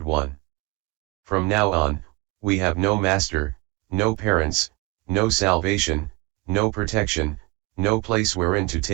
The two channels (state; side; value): quieter; left; 24.9 dB